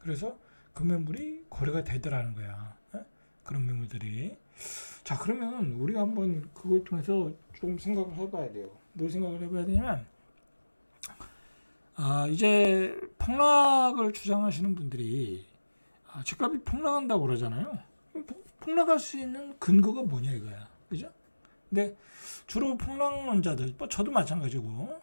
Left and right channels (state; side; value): inverted; both; correlation -1.00